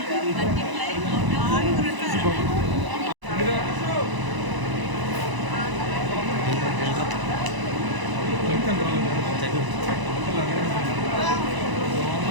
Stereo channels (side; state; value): left; late; 1.0 ms